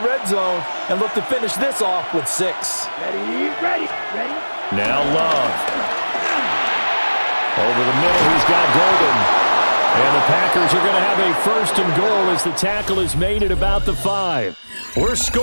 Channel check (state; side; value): inverted; both; correlation -1.00